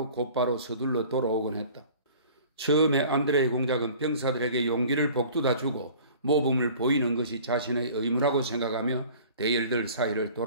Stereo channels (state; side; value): inverted; both; correlation -0.47